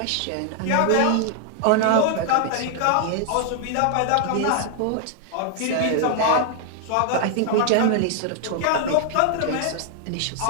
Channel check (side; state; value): both; different; correlation 0.00